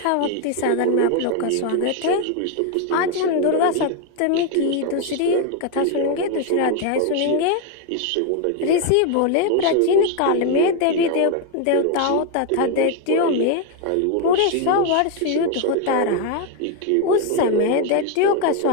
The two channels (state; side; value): different; both; correlation 0.01